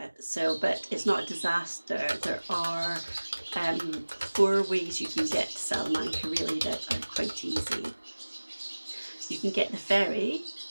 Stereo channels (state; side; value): inverted; both; correlation -1.00